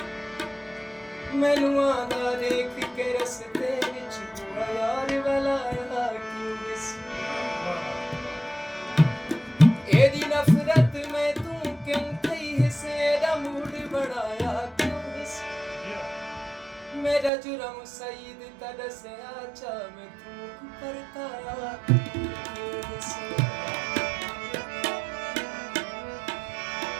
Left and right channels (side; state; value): left; drops out; at 17.3 s